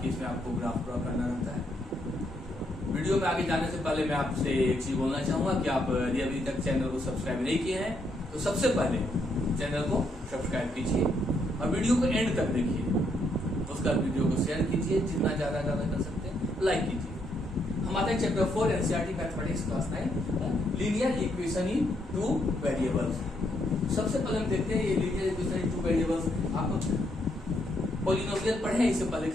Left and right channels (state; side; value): normal; both; correlation 0.75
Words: इसमें आपको ग्राफ ड्रॉ करना रहता है। वीडियो में आगे जाने से पहले मैं आपसे एक चीज बोलना चाहूंगा कि आप यदि अभी तक चैनल को सब्सक्राइब नहीं किए हैं तो सबसे पहले चैनल को सब्सक्राइब कीजिए और वीडियो को एंड तक देखिए। उसका वीडियो को शेयर कीजिए, जितना ज्यादा कर सकते हैं लाइक कीजिए। हमारे chapter 4 NCERT mathematics class 9 linear equation in two variables. सबसे पहले हम देखते हैं ये linear equation in two variables. आप पॉलिनोमियल पढ़े हैं इससे पहले